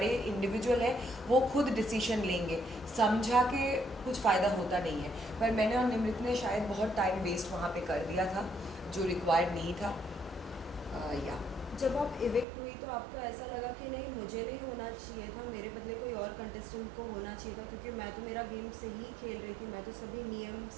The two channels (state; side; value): drops out; left; at 12.5 s